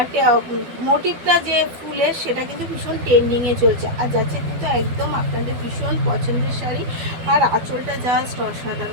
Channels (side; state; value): left; late; 12 ms